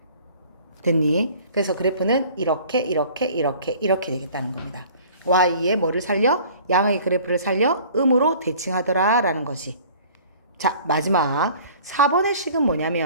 됐니? 그래서 그래프는 이렇게 되겠다는 겁니다. y의 뭐를 살려? 양의 그래프를 살려 음으로 대칭하더라 라는 거지. 자, 마지막 4번의 식은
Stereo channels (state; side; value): inverted; both; correlation -0.49